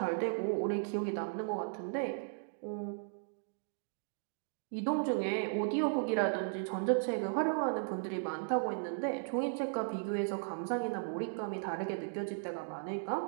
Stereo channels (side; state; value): left; silent; digital silence